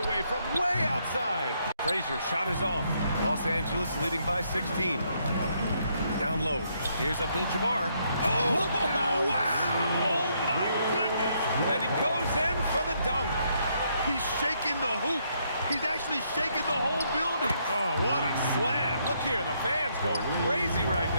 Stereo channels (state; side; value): inverted; both; correlation -0.73